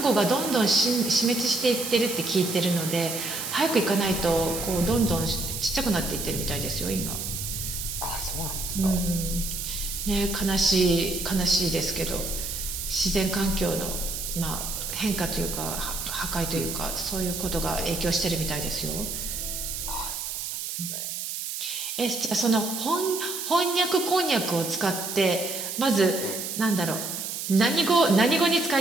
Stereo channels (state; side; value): noise; right; hiss, 5 dB below the sound